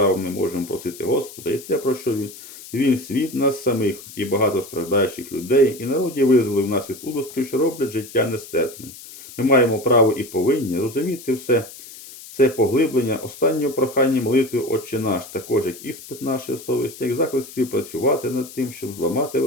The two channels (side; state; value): left; noise; hiss, 16 dB below the sound